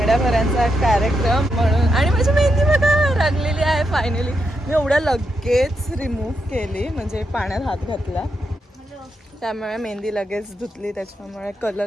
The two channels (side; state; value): both; normal; correlation 0.83